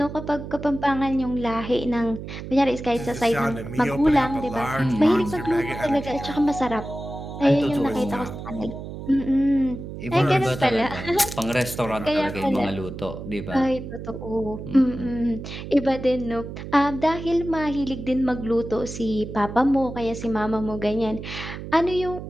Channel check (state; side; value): noise; right; hum, 9 dB below the sound